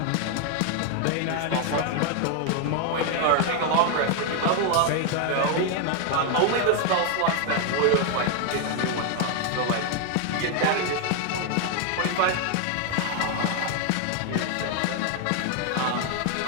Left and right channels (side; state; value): both; different; correlation 0.01